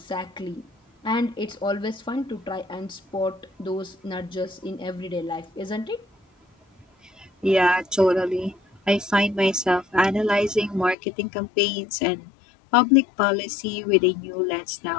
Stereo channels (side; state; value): right; drops out; at 11.0 s